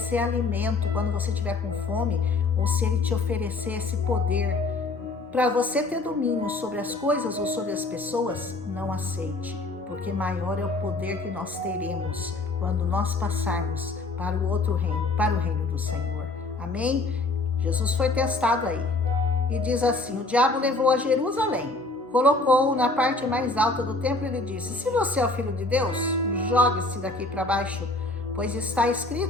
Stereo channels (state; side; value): quieter; right; 3.2 dB